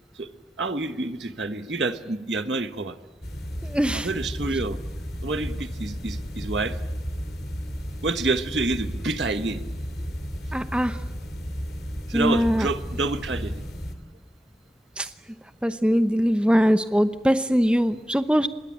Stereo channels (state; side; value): normal; both; correlation 0.84